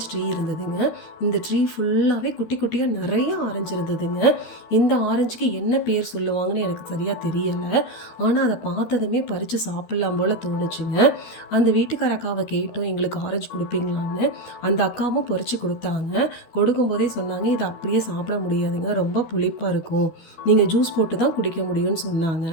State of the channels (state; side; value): late; right; 12 ms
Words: ட்ரீ இருந்ததுங்க. இந்த ட்ரீ ஃபுல்லாகவே குட்டி குட்டியாக நிறைய ஆரஞ்சு இருந்ததுங்க. இந்த ஆரஞ்சுக்கு என்ன பேர் சொல்லுவாங்கன்னு எனக்கு சரியாக தெரியலை. ஆனால் அதை பார்த்ததுமே பறித்து சாப்பிட்லாம் போல் தோணுச்சுங்க. அந்த வீட்டுக்கார அக்காவை கேட்டோம், எங்களுக்கு ஆரஞ்சு கொடுப்பீங்களான்னு. அந்த அக்காவும் பறித்து கொடுத்தாங்க. கொடுக்கும்போதே சொன்னாங்க, இதை அப்படியே சாப்பிட முடியாதுங்க, ரொம்ப புளிப்பாக இருக்கும், நீங்கள் ஜூஸ் போட்டு தான் குடிக்க முடியும்னு சொன்னாங்க.